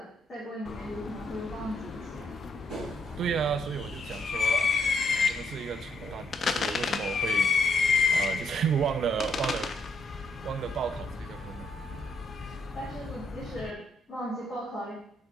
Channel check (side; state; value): both; normal; correlation 0.74